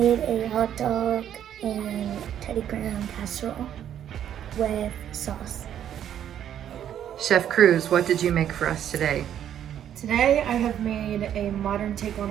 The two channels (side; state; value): left; quieter; 10.1 dB